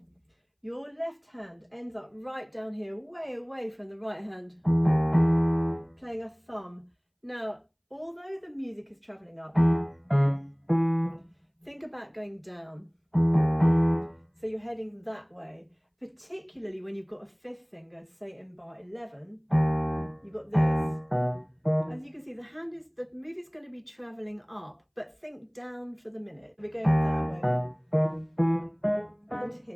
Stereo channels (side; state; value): both; identical; correlation 1.00